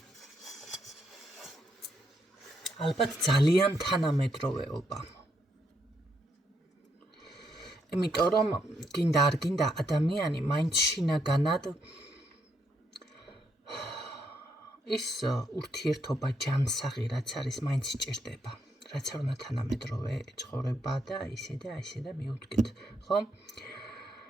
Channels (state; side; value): normal; both; correlation 0.77